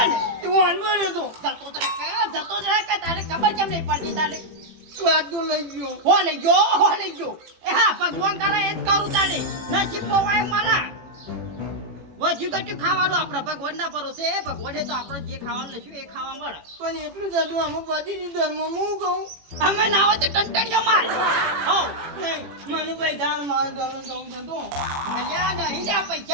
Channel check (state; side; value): late; left; 18 ms